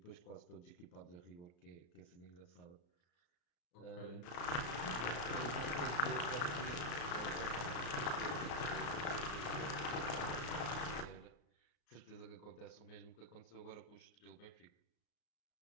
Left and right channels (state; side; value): late; right; 34 ms